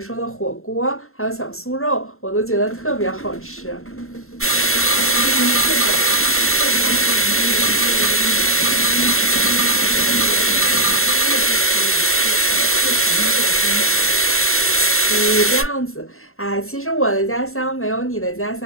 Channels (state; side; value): late; right; 0.62 ms